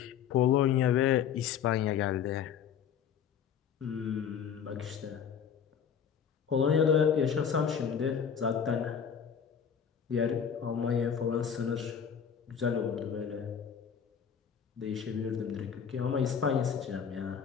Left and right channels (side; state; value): right; quieter; 7.7 dB